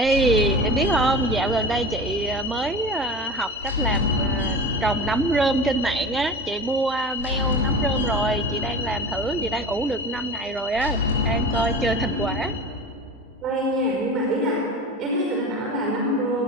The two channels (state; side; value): normal; both; correlation 0.33